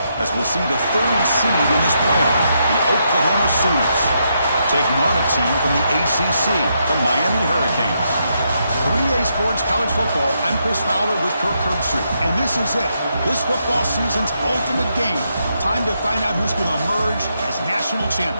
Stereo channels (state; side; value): inverted; both; correlation -0.79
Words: As we'll see the third seed in this playoff, the Oklahoma Sooners, taking on a team from the ACC, the Miami Hurricanes. 3A Sports College Football, I'm Chris Fowler with Kirk Herbstreit, and this is it, this football season's ultimate game. Time to find out who's going to emerge as national